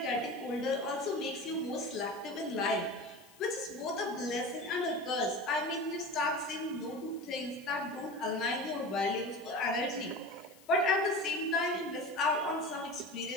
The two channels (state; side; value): noise; left; hiss, 24 dB below the sound